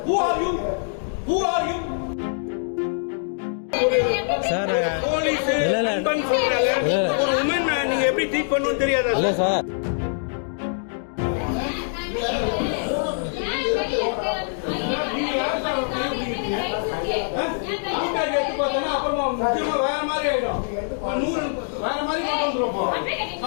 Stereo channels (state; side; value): silent; right; digital silence